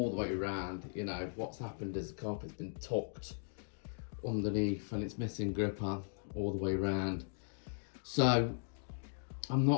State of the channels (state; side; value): silent; right; digital silence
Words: the way around. You know, what's happened is the carpet's been tucked underneath and it's missing gripper all the way around. So I'm